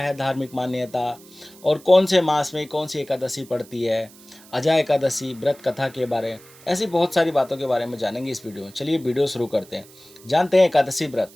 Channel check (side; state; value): right; noise; hiss, 23 dB below the sound